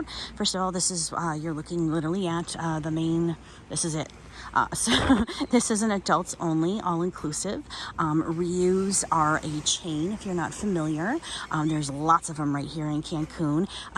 First of all, this is, you're looking literally at this is it. So this is an adults only, all-inclusive. Riu's are a chain, if you're not familiar. There's lots of them right here in Cancun.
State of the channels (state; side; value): identical; both; correlation 1.00